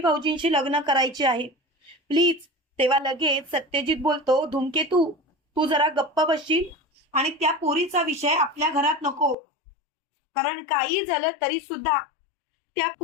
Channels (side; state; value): right; drops out; at 9.3 s